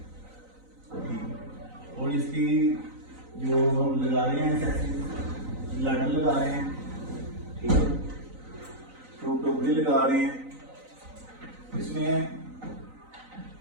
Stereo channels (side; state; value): left; late; 3.9 ms